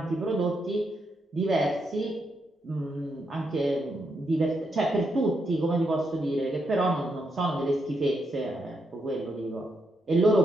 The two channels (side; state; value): both; normal; correlation 0.81